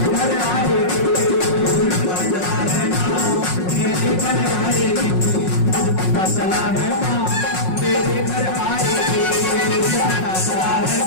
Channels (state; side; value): late; right; 5.5 ms